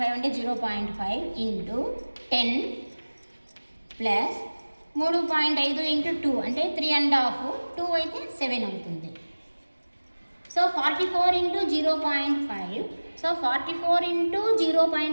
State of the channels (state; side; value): inverted; both; correlation -1.00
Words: అంటే 0.5 ఇంటూ 10 ప్లస్ 3.5 ఇంటూ 2 అంటే 3.5 2 అయితే 7 అవుతుంది. So 44 into 0.5. సో 44 ఇంటూ